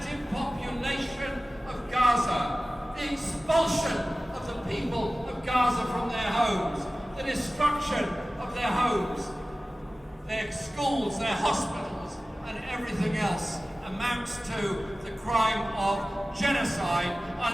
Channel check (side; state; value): both; normal; correlation 0.96